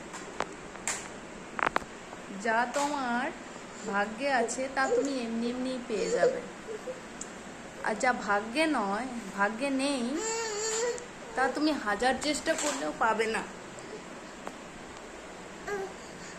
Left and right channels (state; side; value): identical; both; correlation 1.00